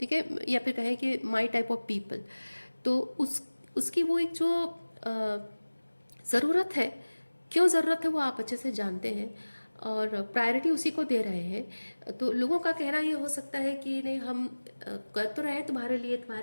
है, या फिर कहें कि माई टाइप ऑफ पीपल। तो उसकी वो एक जो ज़रूरत है, क्यों ज़रूरत है वो आप अच्छे से जानते हैं और प्रायोरिटी उसी को दे रहे हैं। तो लोगों का कहना ये हो सकता है कि नहीं, हम कर तो रहे हैं तुम्हारे लिए,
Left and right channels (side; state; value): both; inverted; correlation -1.00